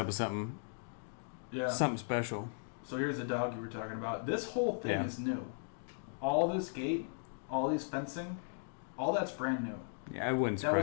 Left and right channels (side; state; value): right; silent; digital silence